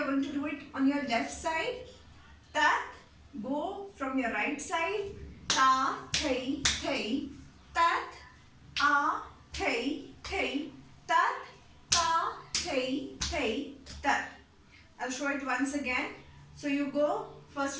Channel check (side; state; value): both; identical; correlation 1.00